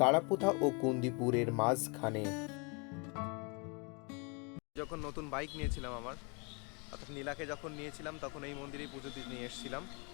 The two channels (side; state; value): right; quieter; 31.9 dB